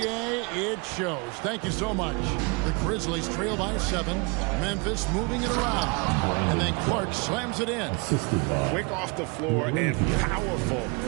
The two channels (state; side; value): quieter; left; 30.0 dB